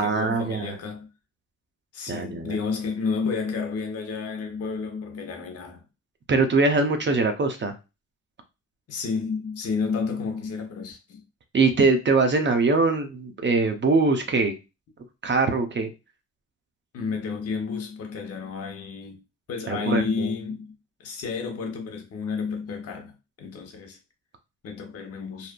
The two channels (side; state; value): both; normal; correlation 0.36